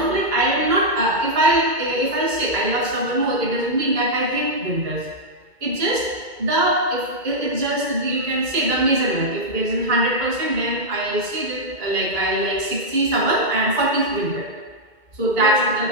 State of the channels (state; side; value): late; left; 2.2 ms